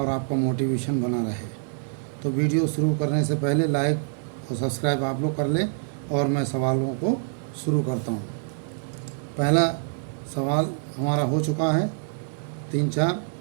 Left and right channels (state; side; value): silent; left; 58 dB below the other